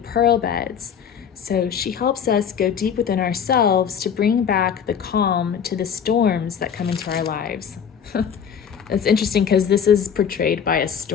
beds. So she helps us go deep within ourselves to bring back the calm to the storms that come into our lives. It's interesting because this is portrayed by a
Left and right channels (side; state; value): right; quieter; 7.6 dB